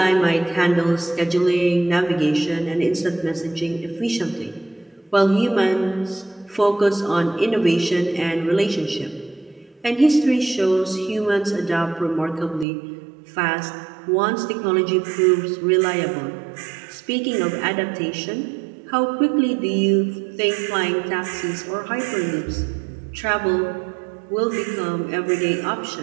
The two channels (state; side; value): drops out; left; at 12.7 s